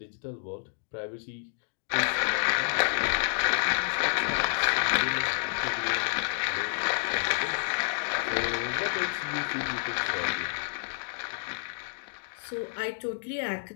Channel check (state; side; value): silent; right; digital silence